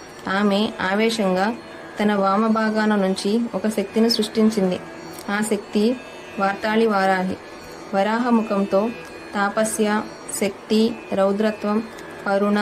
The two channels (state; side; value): identical; both; correlation 1.00